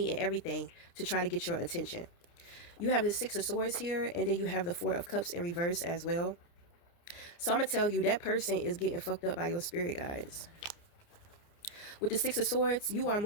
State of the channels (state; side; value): late; right; 29 ms